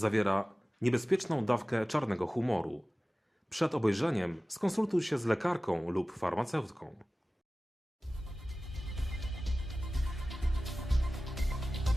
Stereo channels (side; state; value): both; normal; correlation 0.97